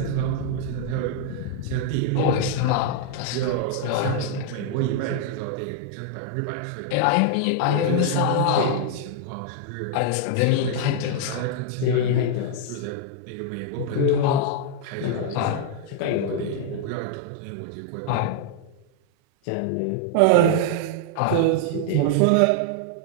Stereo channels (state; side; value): different; both; correlation 0.00